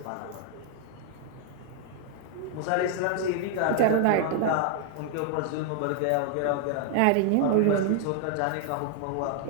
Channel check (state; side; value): different; both; correlation 0.00